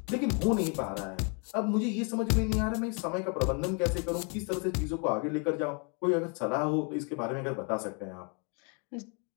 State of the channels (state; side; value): quieter; right; 35.8 dB